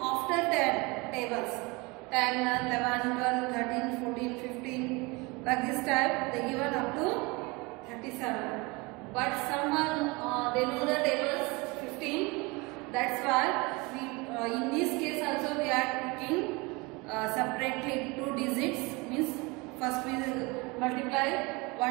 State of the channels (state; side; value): quieter; left; 26.0 dB